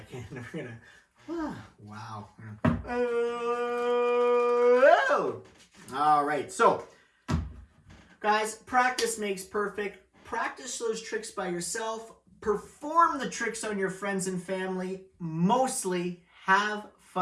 We're going to, wow. Oh! All right. So, guys, practice makes perfect. Practice those tricks by yourself. Perform the tricks on your friends and family. Mostly have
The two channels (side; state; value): both; identical; correlation 1.00